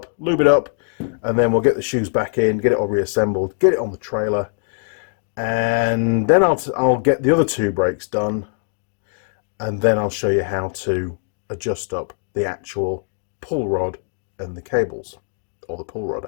lube it up, and then we'll get the shoes back in, get it all reassembled, get it on the trailer, and then I'll get the other two brakes done, and then I'll show you how to adjust up the actual pull rod and the cables, or the pull rod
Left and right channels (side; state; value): right; silent; digital silence